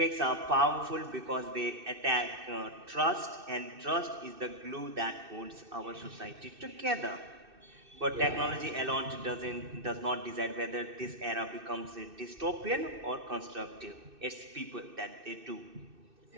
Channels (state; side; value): late; left; 2.6 ms